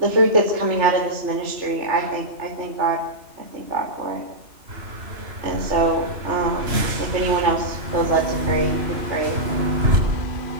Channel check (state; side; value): late; left; 2.9 ms